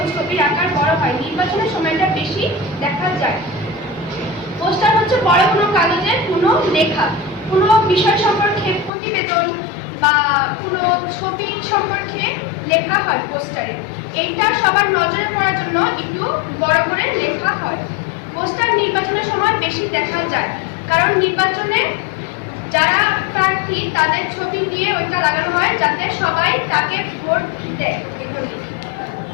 ছবির আকার বড় হয়, নির্বাচনের সময়টা বেশি দেখা যায়। পোস্টার হচ্ছে বড় কোনো কাগজে কোনো লেখা, কোনো বিষয় সম্পর্কে প্রতিবেদন বা কোনো ছবি সম্পর্কে লেখা হয় পোস্টারে। এইটা সবার নজরে পড়ার জন্য একটু বড় করে লেখা হয়। পোস্টার নির্বাচনের সময় বেশি দেখা যায়, কারণ নির্বাচনে যারা প্রার্থী তাদের ছবি দিয়ে ওইটা লাগানো হয়, যাতে সবাই তাকে ভোট দেয়।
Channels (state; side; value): drops out; right; at 8.9 s